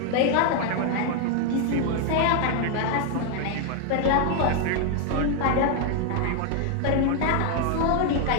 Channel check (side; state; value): both; different; correlation 0.00